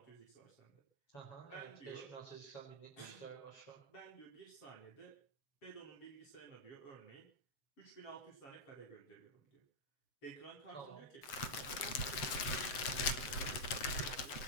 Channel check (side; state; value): right; late; 7.7 ms